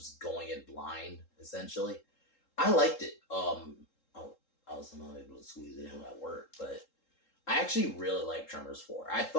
going in blind, essentially. I liked it. I was not able to squeeze it in at work, but I actually really like Tremors 4. I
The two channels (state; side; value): late; right; 3.7 ms